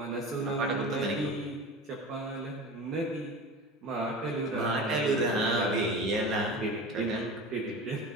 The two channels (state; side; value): normal; both; correlation 0.33